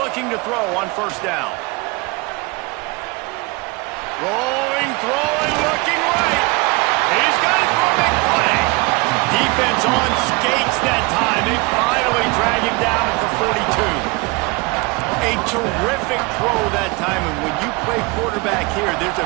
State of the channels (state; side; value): quieter; left; 26.1 dB